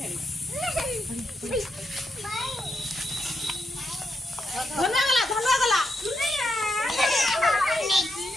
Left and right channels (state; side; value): normal; both; correlation 0.82